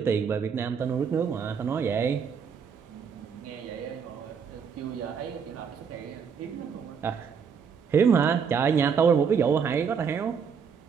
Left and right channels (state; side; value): quieter; left; 6.5 dB